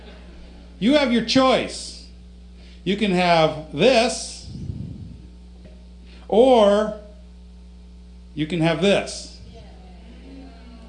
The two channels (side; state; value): both; identical; correlation 1.00